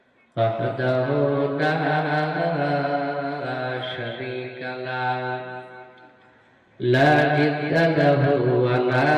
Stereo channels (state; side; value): identical; both; correlation 1.00